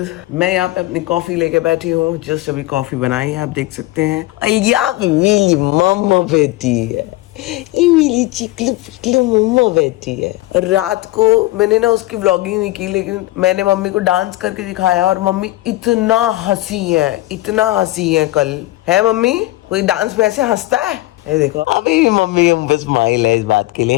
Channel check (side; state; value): right; quieter; 18.4 dB